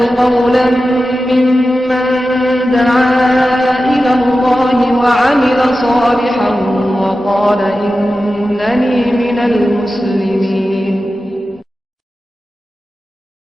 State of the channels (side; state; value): both; normal; correlation 0.93